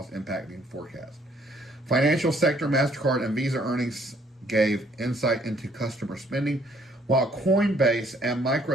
impacting forecasts. Financial sector, MasterCard, and Visa earnings gave insight into customer spending, while Coinbase and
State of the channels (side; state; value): both; normal; correlation 0.64